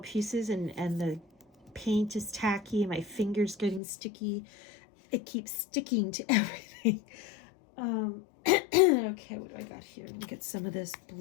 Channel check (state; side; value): drops out; right; at 3.8 s